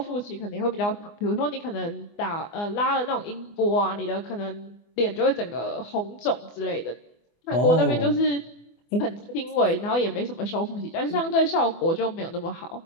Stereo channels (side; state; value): right; late; 24 ms